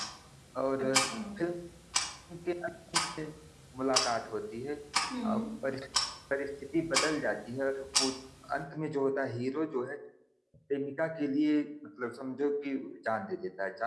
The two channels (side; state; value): both; identical; correlation 1.00